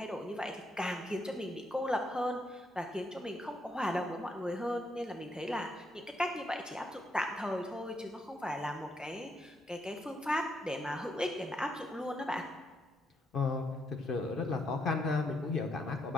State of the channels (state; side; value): normal; both; correlation 0.77